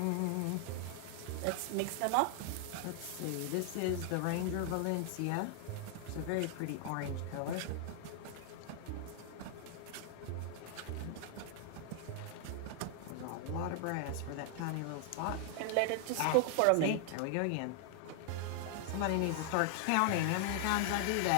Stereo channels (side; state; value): both; different; correlation 0.00